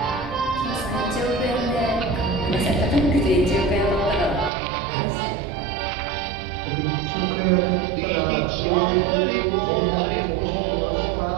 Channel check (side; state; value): left; drops out; at 4.5 s